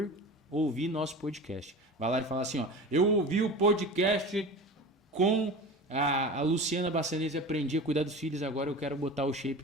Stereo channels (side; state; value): both; normal; correlation 0.33